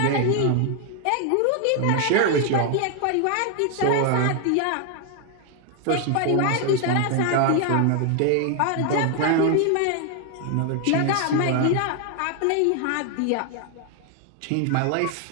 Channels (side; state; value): both; different; correlation 0.00